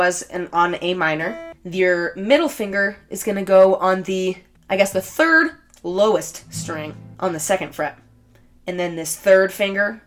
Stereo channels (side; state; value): both; identical; correlation 1.00